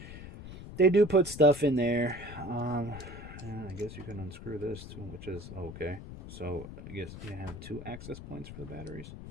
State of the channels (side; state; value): left; noise; rumble, 12 dB below the sound